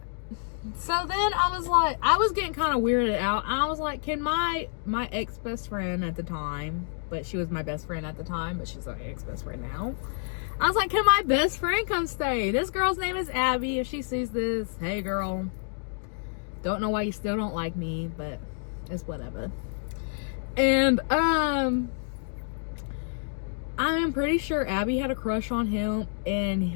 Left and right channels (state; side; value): silent; right; digital silence